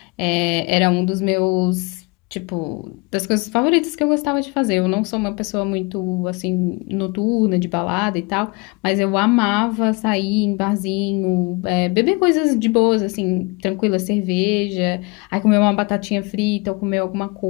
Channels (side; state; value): right; quieter; 27.4 dB